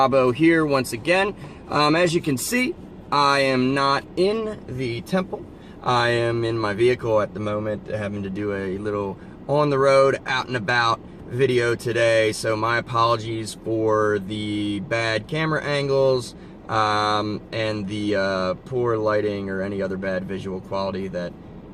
here once again. As you can see, I am not in the temple. I am in my vehicle at the moment, having to do a little on the road, out and about video today. So my apologies for the bad camera angles and the poor lighting or any other bad visual quality that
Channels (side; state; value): both; identical; correlation 1.00